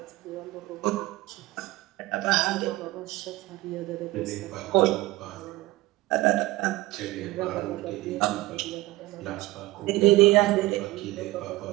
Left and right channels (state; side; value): quieter; left; 18.6 dB